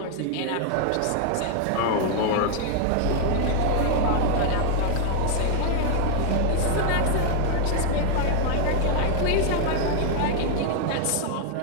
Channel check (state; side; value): different; both; correlation 0.00